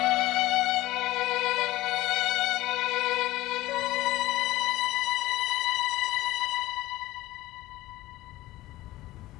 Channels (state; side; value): quieter; right; 17.1 dB